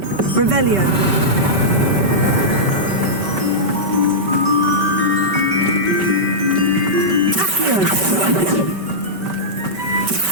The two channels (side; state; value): left; late; 5.2 ms